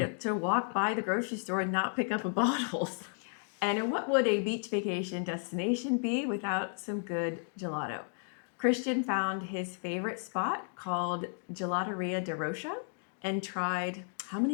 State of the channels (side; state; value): right; silent; 56 dB below the other